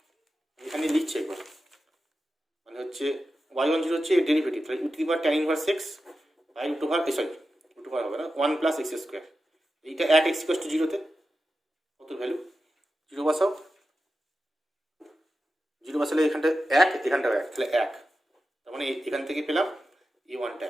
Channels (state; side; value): normal; both; correlation 0.92